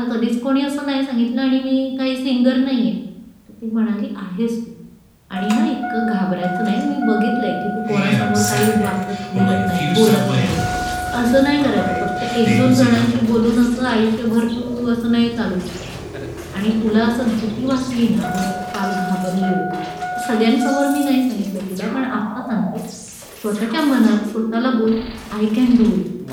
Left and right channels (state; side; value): identical; both; correlation 1.00